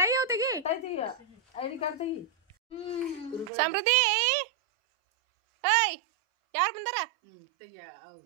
ಟೈ ಅವ್ ತೆಗಿ ಐಡಿ ಕಾರ್ಡ್ ತೆಗಿ ಸಮೃದ್ಧಿ ಏಯ್ ಯಾರು ಬಂದಾರ ತೆಗಿಯ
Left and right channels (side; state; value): left; drops out; at 3.5 s